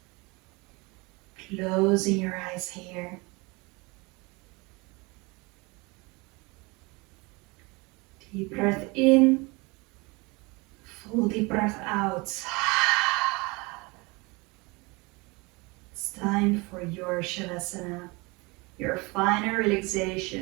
Closing your eyes here. Deep breath in, full deep breath out. It's time for your Shavasana, your final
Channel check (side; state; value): left; quieter; 26.3 dB